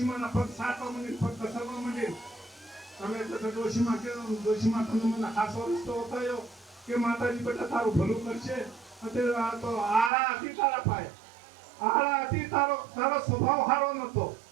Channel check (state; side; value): drops out; left; at 10.1 s